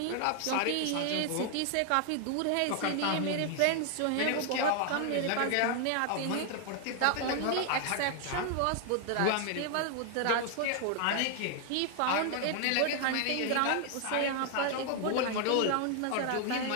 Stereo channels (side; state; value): both; different; correlation 0.00